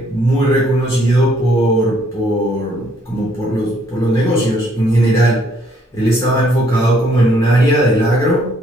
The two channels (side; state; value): both; normal; correlation 0.66